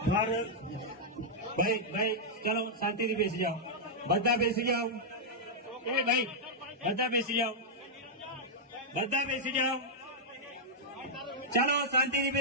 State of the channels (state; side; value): normal; both; correlation -0.06